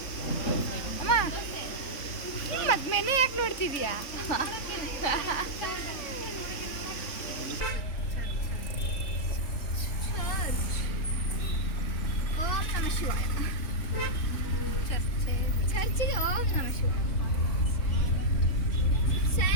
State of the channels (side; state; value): right; late; 3.5 ms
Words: ಅಮ್ಮ ಮತ್ತೆ ಮೆನು ಯಾಕೆ ನೋಡ್ತಿದ್ಯಾ? ಓಂ ನಮಃ ಶಿವಾಯ. ಚರ್ಚಿಗೆ ಓಂ ನಮಃ ಶಿವಾಯ.